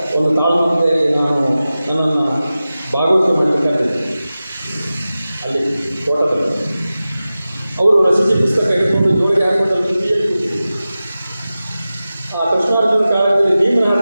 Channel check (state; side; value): inverted; both; correlation -0.95